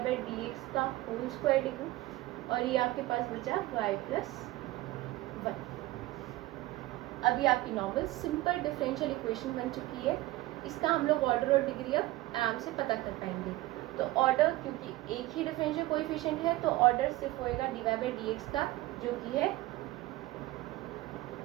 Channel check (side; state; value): left; quieter; 18.3 dB